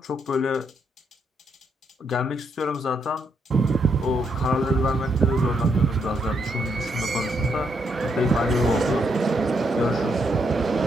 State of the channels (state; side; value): normal; both; correlation 0.77